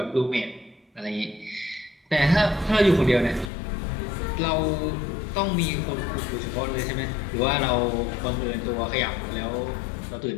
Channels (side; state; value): right; drops out; at 3.5 s